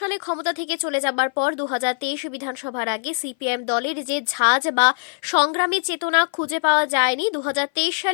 সালে ক্ষমতা থেকে চলে যাবার পর 2023 বিধানসভার আগে সিপিএম দলের যে ঝাঁজ বা সংগ্রামী চেতনা খুঁজে পাওয়া যায়নি, 2023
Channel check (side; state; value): right; silent; 58 dB below the other